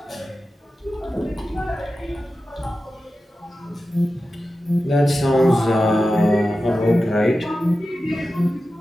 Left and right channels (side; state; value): both; normal; correlation 0.93